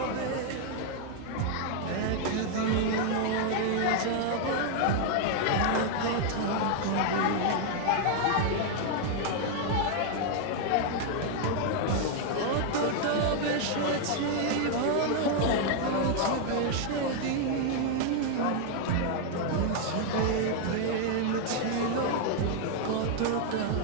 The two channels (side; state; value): both; different; correlation 0.00